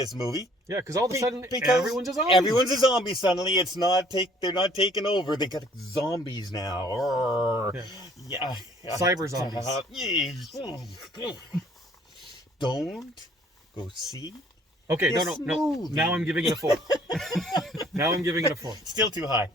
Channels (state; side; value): normal; both; correlation 0.58